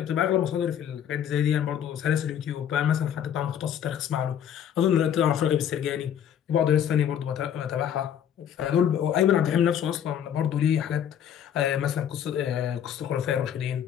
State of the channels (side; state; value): right; quieter; 9.3 dB